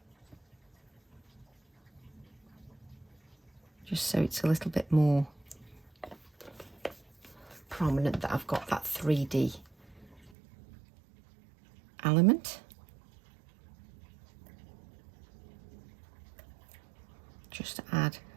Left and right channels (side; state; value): left; drops out; at 10.3 s